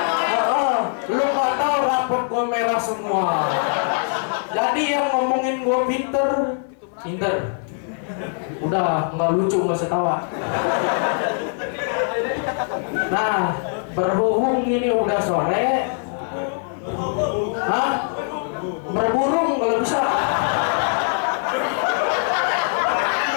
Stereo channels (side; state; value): right; silent; 64 dB below the other